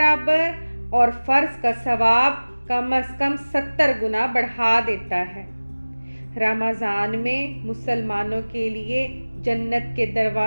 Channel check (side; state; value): both; inverted; correlation -1.00